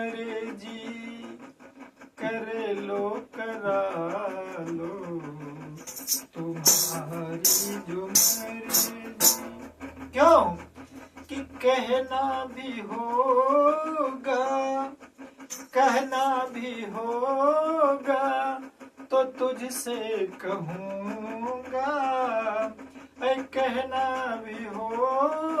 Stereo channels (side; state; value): both; identical; correlation 1.00